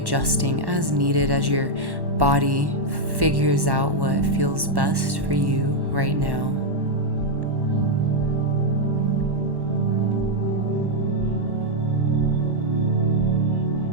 as needed as your body figures out what feels best for you right now.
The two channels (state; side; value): late; left; 1.1 ms